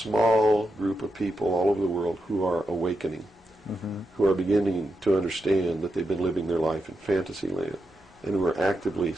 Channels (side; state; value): both; normal; correlation 0.86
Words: group of people all over the world who are awakening, who are beginning to understand that they've been living their life in fantasy land, and who are actively